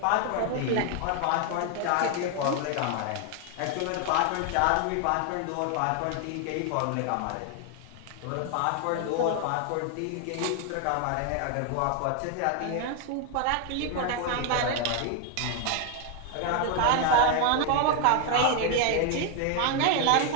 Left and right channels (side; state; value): both; different; correlation 0.01